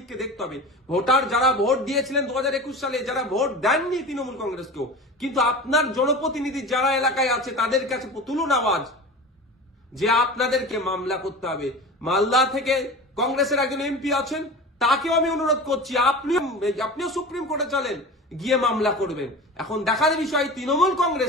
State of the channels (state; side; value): normal; both; correlation 0.33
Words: দেখতে হবে। ভোটার যারা ভোট দিয়েছিলেন 2021 সালে, যারা ভোট দেননি তৃণমূল কংগ্রেসকেও, কিন্তু আপনার জনপ্রতিনিধি যারা এলাকায় আছে তাদের কাছে তুলুন আওয়াজ যে আপনাদেরকে মামলা করতে হবে। মালদা থেকে কংগ্রেসের একজন এমপি আছেন, তাকেও আমি অনুরোধ করছি আপনিও সুপ্রিম কোর্টে চলেন, গিয়ে মামলা করবেন। এখন দেখার বিষয় তৃণমূল